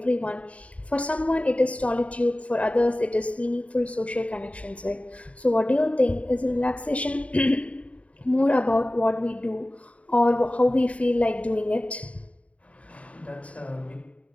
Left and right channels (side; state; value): right; late; 0.065 ms